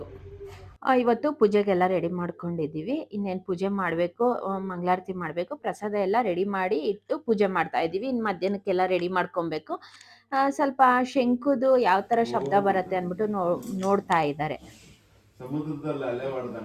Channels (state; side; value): identical; both; correlation 1.00